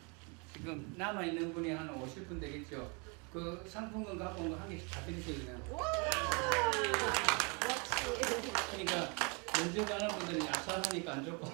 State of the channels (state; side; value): quieter; left; 33.2 dB